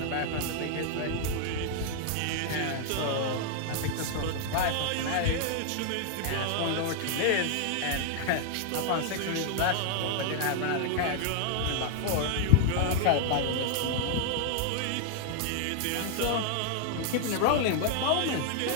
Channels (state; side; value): different; both; correlation 0.00